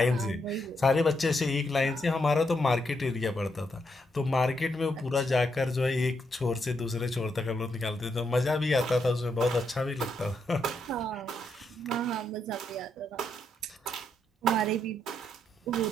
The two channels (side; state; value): both; normal; correlation 0.79